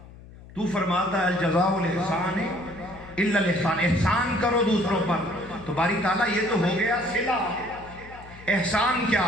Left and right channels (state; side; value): noise; left; hum, 19 dB below the sound